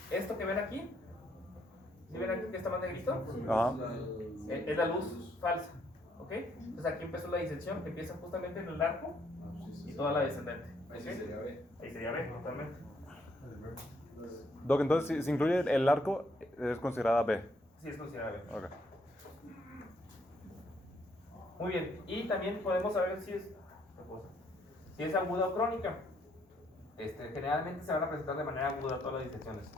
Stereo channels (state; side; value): normal; both; correlation 0.70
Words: esto que ven aquí. ¿Sí ven aquí que está más negrito? Ajá. Es la luz falsa. ¿Ok? Entonces, aquí empezó la disección, que empieza justamente en el arco y toda la descendente. Ahí sí ¿Ok? sería B. Ahí sería B, totalmente. Doc, entonces si incluye el arco, es considerada B. Sí, es considerada B. Ok. Muy bien, y también podemos saber si es aguda o crónica. Generalmente se van a presentar de manera aguda todas las disecciones.